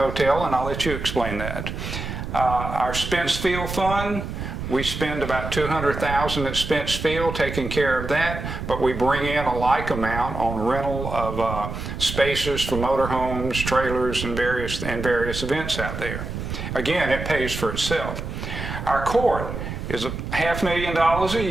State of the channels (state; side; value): noise; right; rumble, 6 dB below the sound